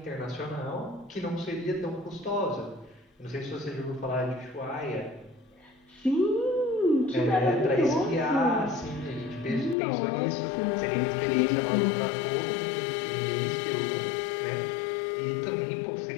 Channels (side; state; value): right; drops out; at 9.8 s